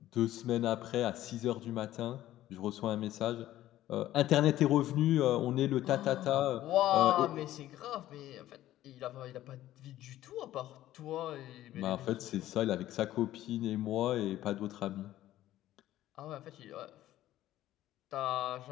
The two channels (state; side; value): quieter; right; 14.0 dB